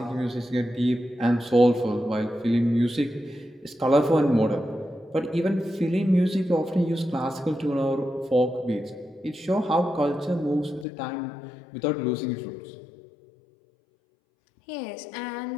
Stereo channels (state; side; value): drops out; right; at 10.9 s